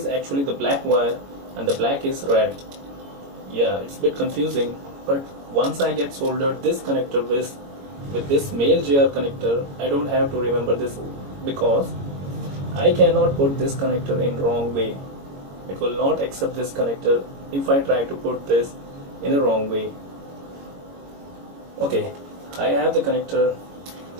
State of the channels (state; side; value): late; left; 22 ms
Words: actually the black wire and the black is red. Yeah, it's a bit confusing, but once I get soldered this connector with this male JR connector, I don't have to remember this, because I cannot put this connector in wrong way. It will not accept this connector if I try to put this in a wrong way. Okay, I have the connector